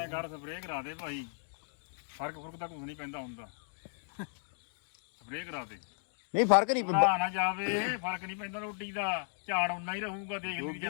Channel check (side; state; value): right; silent; digital silence